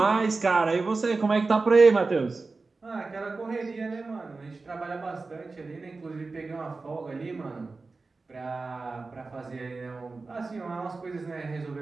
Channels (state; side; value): quieter; left; 3.9 dB